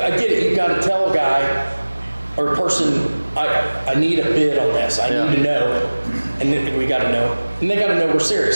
you gotta tell a guy or a person, I need a bid on this, I need to know, and then we gotta know, and they gotta know we're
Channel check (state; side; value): inverted; both; correlation -1.00